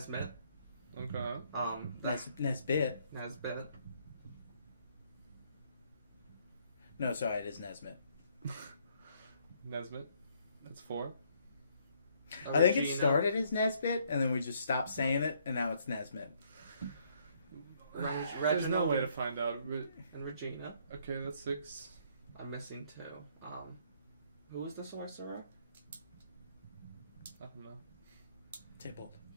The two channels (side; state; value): both; inverted; correlation -0.68